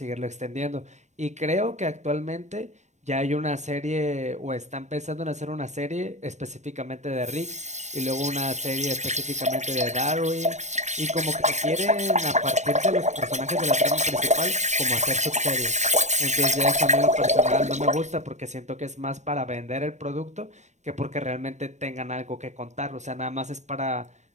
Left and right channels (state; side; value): late; left; 0.34 ms